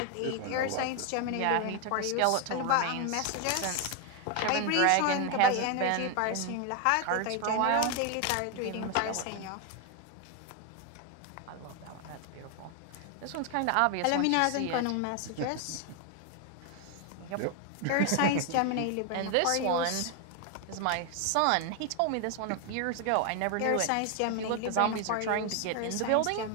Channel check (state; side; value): different; both; correlation 0.01